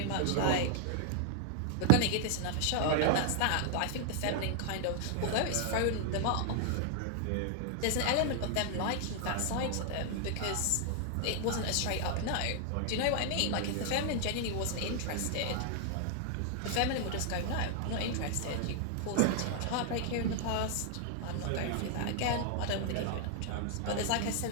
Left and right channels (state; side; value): different; both; correlation 0.00